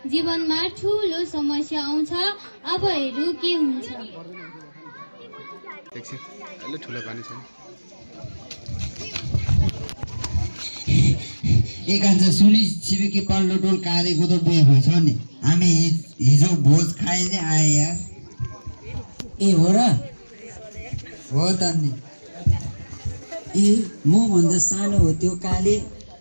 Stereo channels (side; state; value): both; inverted; correlation -1.00